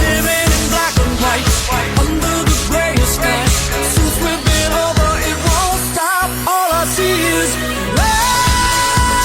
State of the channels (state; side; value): identical; both; correlation 1.00